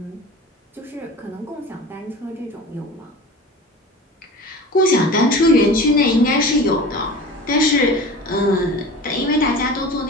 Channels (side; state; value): both; normal; correlation 0.36